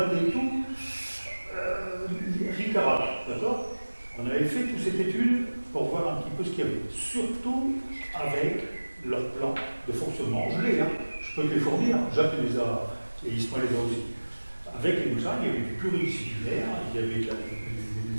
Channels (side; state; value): both; inverted; correlation -1.00